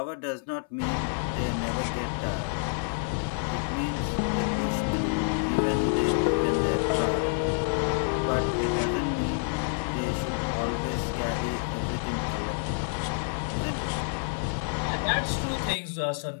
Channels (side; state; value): right; silent; 59 dB below the other